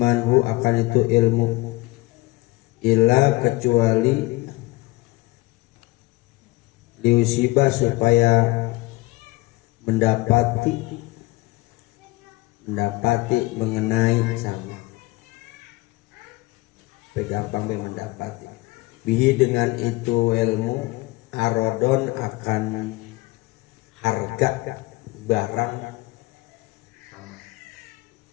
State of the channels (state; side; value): quieter; right; 21.4 dB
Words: akan itu ilmu illa kecuali liusibah supaya mendapati mengenai sama gampang mendapati bihi dengan itu ilmu arodon akan harga barang sama